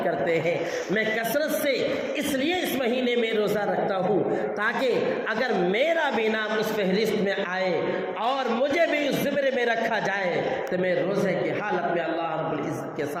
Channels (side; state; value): both; identical; correlation 1.00